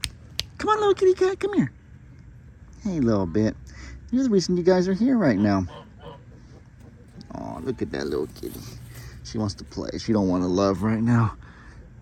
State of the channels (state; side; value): identical; both; correlation 1.00